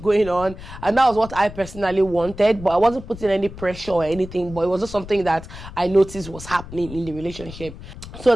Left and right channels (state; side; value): noise; left; rumble, 14 dB below the sound